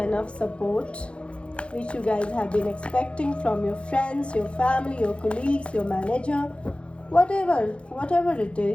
enough support which you guys have been expecting from your friends, your family, your colleagues, your manager, whatever it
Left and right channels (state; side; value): late; right; 0.059 ms